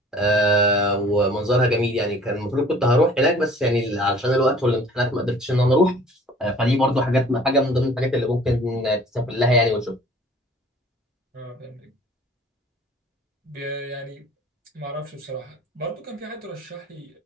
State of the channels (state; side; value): normal; both; correlation 0.50